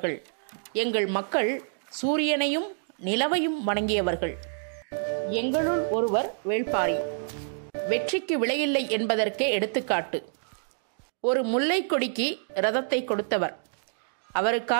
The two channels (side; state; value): left; silent; digital silence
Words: எங்கள் மக்கள் சூரியனையும் நிலவையும் வணங்கியவர்கள். எங்களுள் ஒருவர் வேள்பாரி. வெற்றிக்கு விலையில்லை என்பதற்கே எடுத்துக்காட்டு. ஒரு முல்லை கொடிக்கு ரதத்தை கொடுத்தவர்.